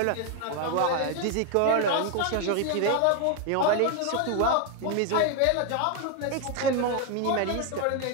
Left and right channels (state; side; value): different; both; correlation 0.01